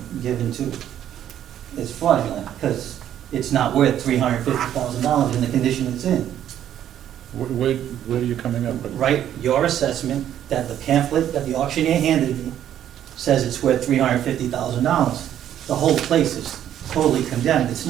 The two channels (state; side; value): quieter; left; 10.8 dB